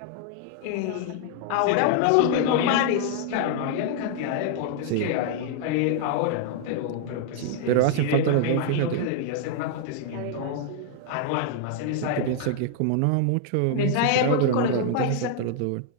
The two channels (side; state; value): both; different; correlation 0.00